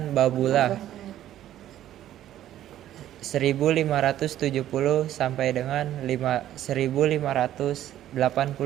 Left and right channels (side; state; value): left; quieter; 12.4 dB